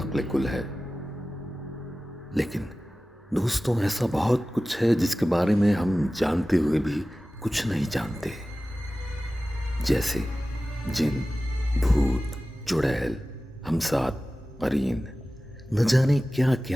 کل ہے. لیکن دوستوں، ایسا بہت کچھ ہے جس کے بارے میں ہم جانتے ہوئے بھی کچھ نہیں جانتے، جیسے جن، بھوت، چڑیل، ہمسات، قرین، نہ جانے کیا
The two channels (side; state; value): both; normal; correlation 0.96